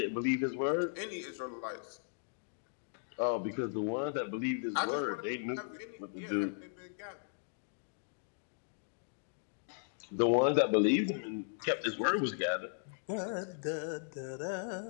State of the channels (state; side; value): silent; right; digital silence